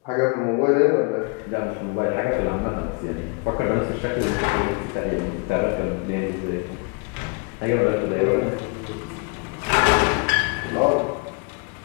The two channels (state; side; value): quieter; right; 33.2 dB